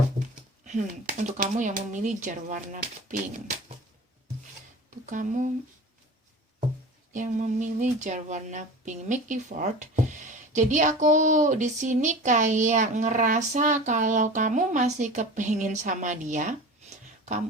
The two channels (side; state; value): both; normal; correlation 0.36